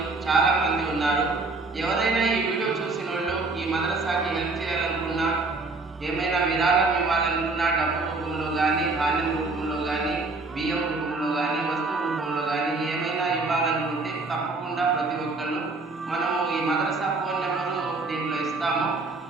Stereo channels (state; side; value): quieter; left; 3.6 dB